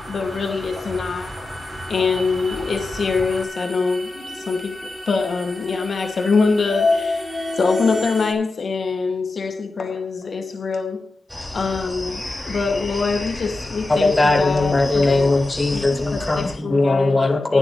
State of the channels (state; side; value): quieter; right; 3.2 dB